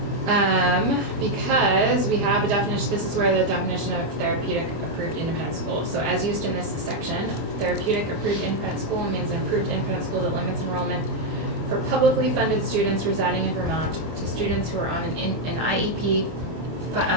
Because we have a definition, this is where the definition of therapeutic approved independent school. So as used in this section, therapeutic approved independent school means an approved independent school that limits enrollment for publicly funded students residing in Vermont to students who are on an IEP,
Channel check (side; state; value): left; late; 25 ms